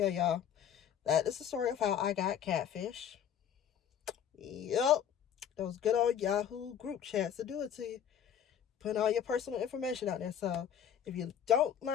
y'all. That is the story of how I got catfish. Yep. Those good old Yahoo group chats to do it to you. Putting all your personal information out there. So if you don't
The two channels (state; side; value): quieter; right; 9.0 dB